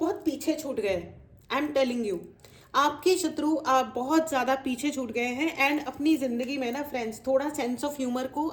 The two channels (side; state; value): both; identical; correlation 1.00